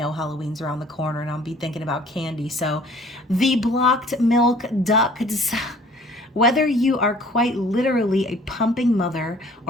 Halloween's around the corner and I'll be thinking about candy. So the blocked milk ducts. Whether you are quite literally a pumping mother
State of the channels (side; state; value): both; normal; correlation 0.54